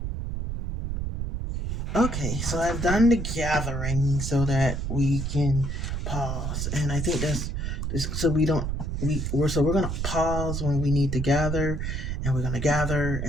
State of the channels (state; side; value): noise; right; rumble, 3 dB below the sound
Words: Okay, so I've done the gathering so that we can pause, and I think that's so we don't we're gonna pause when we need to gather, and we're gonna gather,